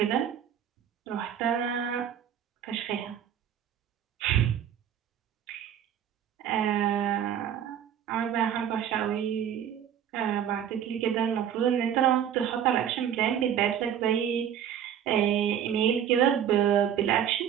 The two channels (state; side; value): quieter; left; 9.4 dB